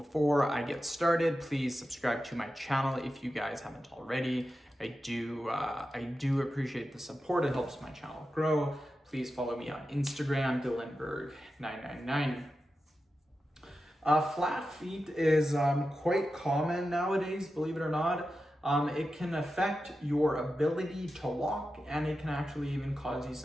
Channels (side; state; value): both; normal; correlation 0.91